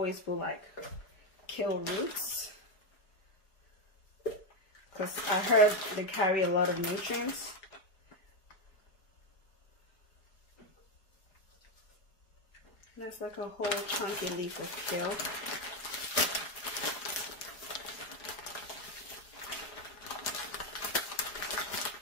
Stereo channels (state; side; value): late; right; 4.7 ms